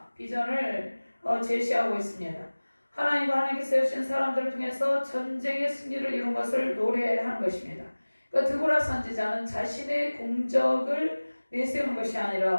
비전을 제시하고 있습니다. 하나님과 하나님께서 세우신 사람들을 통해서 전쟁의 승리를 이룬 것을 노래하는 것입니다. 그러니까 드보라 선지자는 자신의 공적을 내세우는 것이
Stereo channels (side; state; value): both; inverted; correlation -1.00